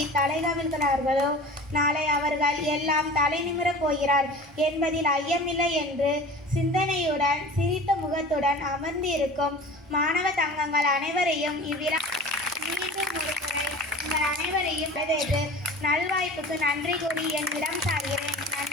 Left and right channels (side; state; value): both; normal; correlation 0.39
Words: தலைகவிழ்கிறார்களோ நாளை அவர்கள் எல்லாம் தலை நிமிரப் போகிறார் என்பதில் ஐயமில்லை என்று சிந்தனையுடன் சிரித்த முகத்துடன் அமர்ந்து இருக்கும் மாணவ தங்கங்கள் அனைவரையும் இவ்விழா மீண்டும் ஒருமுறை உங்கள் அனைவரையும் வரவேற்று நல்வாய்ப்புக்கு நன்றி கூறி என்னிடம் சார்கிறேன்.